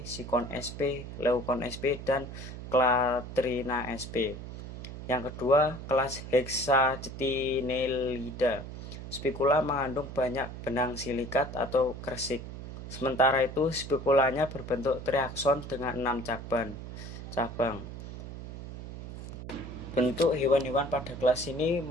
Sikon sp, Leucon sp, dan Clatrina sp. Yang kedua, kelas Hexacetinellida. Spikula mengandung banyak benang silikat atau kresik. Sementara itu, spikulanya berbentuk triakson dengan 6 cabang. Bentuk hewan-hewan pada kelas ini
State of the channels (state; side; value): noise; right; hum, 10 dB below the sound